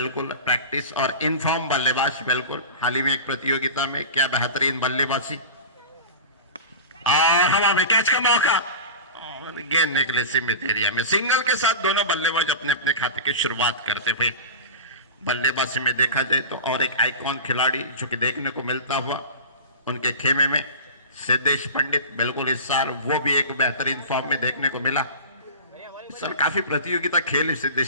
प्रैक्टिस और इनफॉर्म बल्लेबाज. बिल्कुल हाल ही में एक प्रतियोगिता में क्या बेहतरीन बल्लेबाजी. हवा में कैच का मौका और गेंद निकले सीमित एरिया में. सिंगल के साथ दोनों बल्लेबाज अपने अपने खाते की शुरुआत करते हुए. बल्लेबाजी में देखा जाए तो और एक आइकॉन खिलाड़ी जो कि देखने को मिलता हुआ उनके खेमे में सिद्धेश पंडित. बिल्कुल इस साल वो भी एक बेहतरीन फॉर्म में देखने को मिला. इस साल काफी प्रतियोगिता खेली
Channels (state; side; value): inverted; both; correlation -0.31